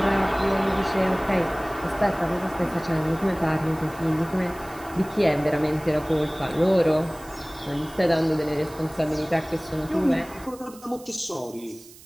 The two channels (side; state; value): right; noise; hiss, 21 dB below the sound